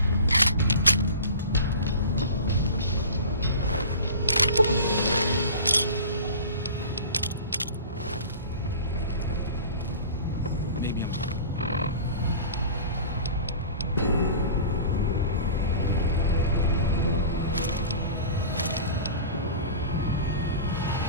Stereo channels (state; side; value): inverted; both; correlation -0.37